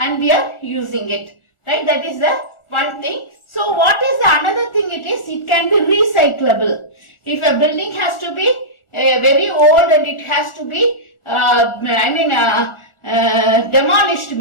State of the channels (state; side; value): late; right; 1.4 ms